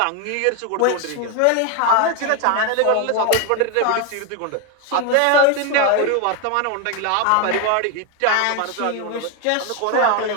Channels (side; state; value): both; different; correlation 0.01